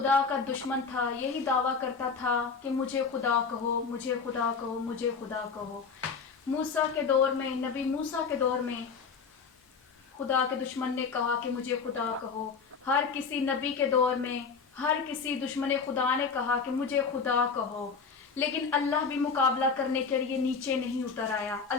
کا دشمن تھا، یہی دعویٰ کرتا تھا کہ مجھے خدا کہو، مجھے خدا کہو، مجھے خدا کہو۔ موسیٰ کے دور میں، نبی موسیٰ کے دور میں خدا کے دشمن نے کہا کہ مجھے خدا کہو۔ ہر کسی نبی کے دور میں ہر کسی دشمن خدا نے کہا کہ مجھے خدا کہو، لیکن اللہ بھی مقابلہ کرنے کے لیے نیچے نہیں اتر آیا۔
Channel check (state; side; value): quieter; right; 5.4 dB